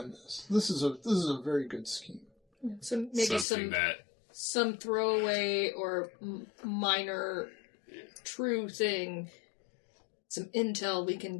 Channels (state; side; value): drops out; right; at 3.5 s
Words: this. This is a very good scheme. So maybe Something that some throwaway or minor true thing, some intel we